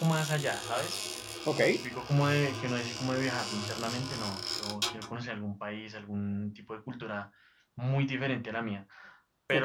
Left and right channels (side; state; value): both; identical; correlation 1.00